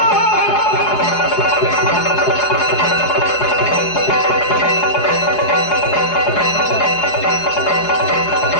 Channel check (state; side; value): late; right; 4.8 ms